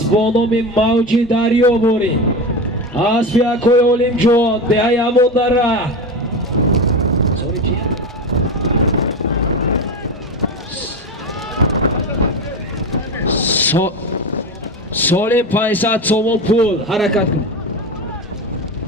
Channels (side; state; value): both; normal; correlation 0.22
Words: با نام موجی دریابوری اسب یکوی اولیم جوان دهی همون در ره سالم 500 سومون پول حرکت کن